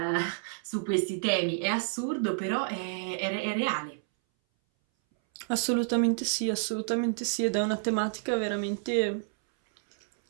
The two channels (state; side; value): silent; left; 58 dB below the other